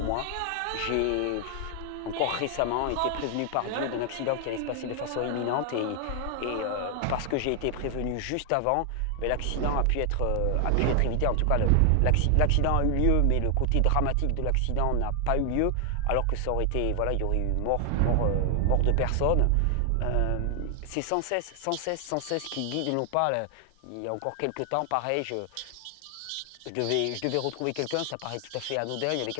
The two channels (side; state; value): both; different; correlation 0.00